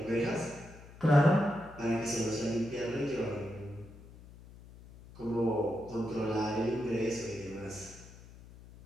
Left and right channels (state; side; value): noise; left; hum, 19 dB below the sound